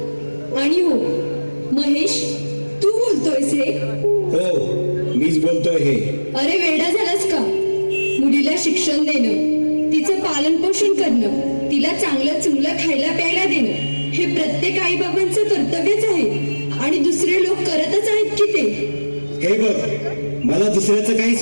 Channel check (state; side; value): inverted; both; correlation -1.00